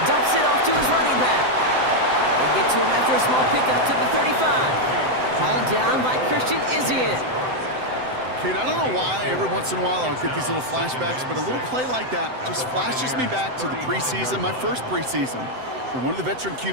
Dumps it off to his running back. They get to him after a small pickup to the 35. Hauled down by Christian Izzian. Kate, I don't know why every once in a while I'll get these little flashbacks, but a little play like that just flashes me back to the preseason, my first preseason. And one of the veteran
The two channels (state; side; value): late; left; 7.8 ms